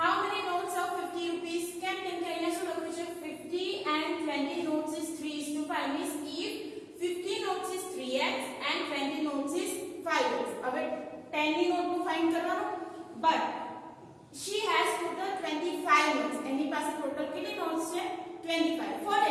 many notes of 50 rupees? કેમ કે અહીંયા શું લખ્યું છે? 50 and 20 notes is 3:5. means if 50 notes is 3x and 20 notes is 5x. હવે 10 ની નોટ નું ફાઇન્ડ કરવાનું. but she has total 25 notes. એની પાસે ટોટલ કેટલી નોટ્સ છે? 25. for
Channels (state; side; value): identical; both; correlation 1.00